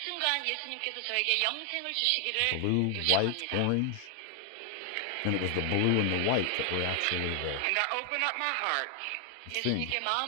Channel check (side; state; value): both; different; correlation 0.00